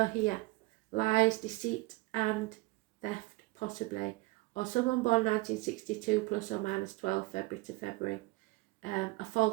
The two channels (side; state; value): left; quieter; 22.2 dB